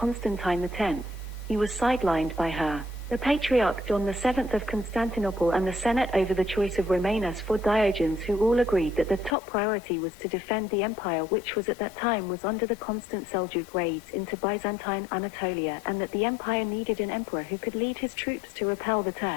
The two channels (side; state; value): right; drops out; at 9.3 s